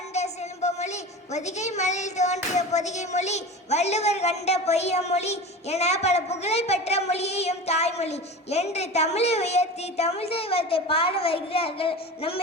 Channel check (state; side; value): normal; both; correlation 0.32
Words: செல்வமொழி பொதிகை மலையில் தோன்றிய பொதிகை மொழி வள்ளுவர் கண்ட பொய்யமொழி என பல புகழ் பெற்ற மொழியையும் தாய்மொழி என்று தமிழை உயர்த்தி தமிழ் தெய்வத்தை பாட வருகிறார்கள் நம்